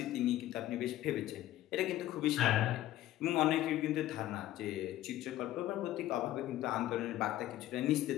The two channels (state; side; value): quieter; right; 14.2 dB